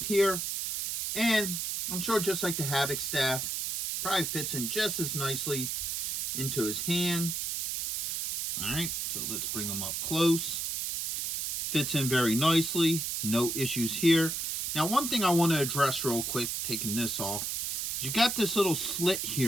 here. And I'm sure just like the Havoc staff, probably fits in just as nicely into his hand. Alright, so let's bring him up close. Fits in very nicely. No issues here. Now, one thing I want to address real quick, taking this off, is you got this little slit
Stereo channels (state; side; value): noise; right; hiss, 1 dB below the sound